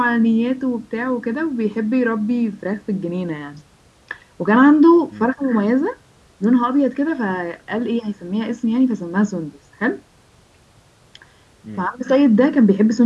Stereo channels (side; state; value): both; identical; correlation 1.00